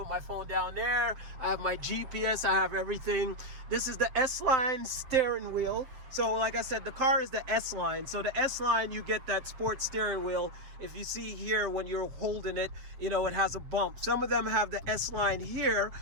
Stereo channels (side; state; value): left; late; 7.7 ms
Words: my phone down there. I have my GPS, I have everything. This is the S-Line steering wheel. So like I said, the car is the S-Line. So the S-Line, you get that sports steering wheel. If you see here when you're holding it, you know, it has a bump. Some of them have the S-Line here,